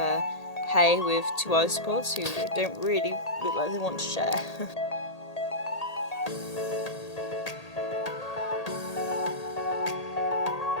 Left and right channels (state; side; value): late; right; 1.8 ms